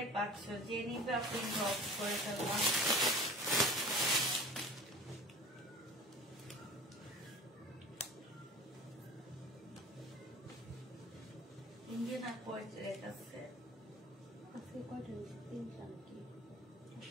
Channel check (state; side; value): normal; both; correlation 0.41